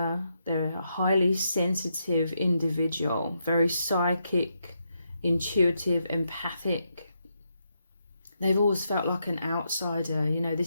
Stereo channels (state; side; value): inverted; both; correlation -0.81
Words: They're a highly sensitive individual, very psychic, intuitive, empathic. They've always felt like an outsider. You know,